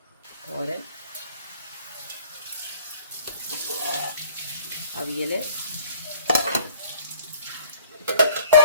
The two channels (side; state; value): both; inverted; correlation -0.53